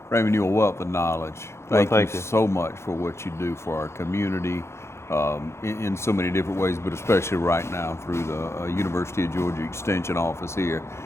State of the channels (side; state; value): right; late; 0.13 ms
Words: Raymond, you're a wealth of knowledge. Well, Thank thank you you. so much for what you do for our community in so many different ways, but especially right now through the University of Georgia Extension office here.